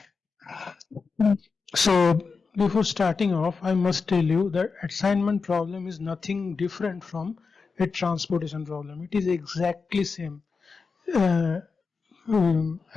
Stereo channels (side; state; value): right; quieter; 4.8 dB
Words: So before starting off, I must tell you that assignment problem is nothing different from a transportation problem. It is exactly same uh,